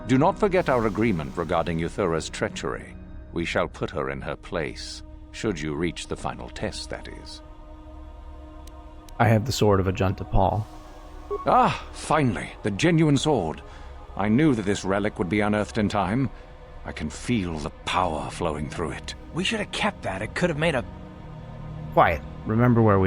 Do not forget our agreement regarding Euthura's treachery. We shall put her in her place, should you reach the final test, that is. I have the sword of Ajunta, Pall. Ah, finally, the genuine sword. I knew that this relic would be unearthed in time. I can feel the power flowing through it. We should have kept that. It could have made a... Quiet. Remember where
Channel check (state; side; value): identical; both; correlation 1.00